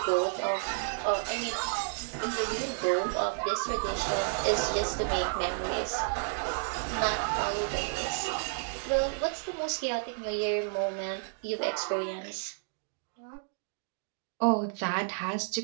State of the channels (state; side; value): silent; left; digital silence